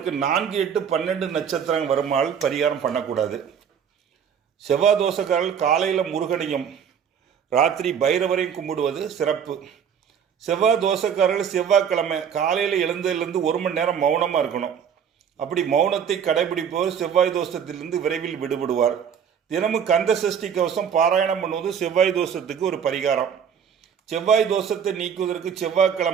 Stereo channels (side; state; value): left; quieter; 7.8 dB